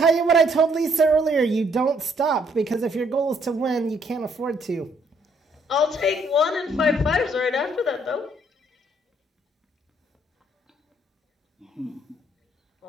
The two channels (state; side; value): normal; both; correlation 0.67